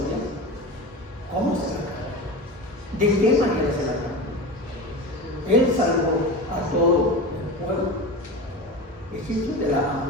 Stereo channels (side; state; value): both; normal; correlation 0.28